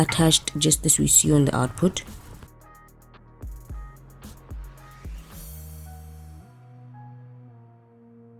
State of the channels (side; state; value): both; identical; correlation 1.00